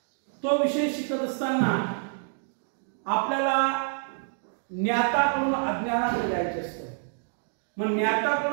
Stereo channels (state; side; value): silent; left; digital silence